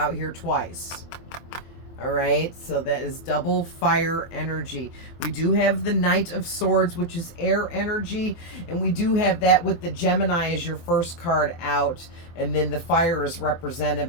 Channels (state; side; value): late; right; 23 ms